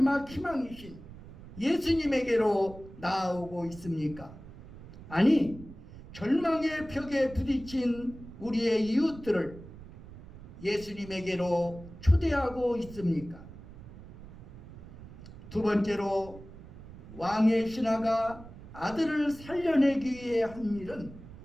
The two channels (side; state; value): right; noise; rumble, 16 dB below the sound